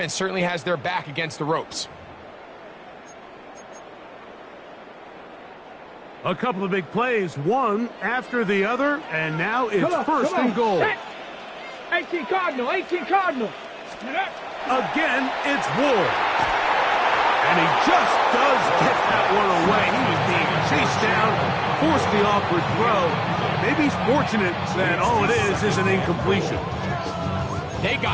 certainly has their back against the ropes. A couple of big plays, one after the other, and now it's first and goal. 18 Cardinal, 18 Cardinal. Again, it's Ward. And he just does get that one away. He was being chased down, forced the awkward throw. Maybe he's fortunate that all it is an incompletion. They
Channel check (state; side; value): identical; both; correlation 1.00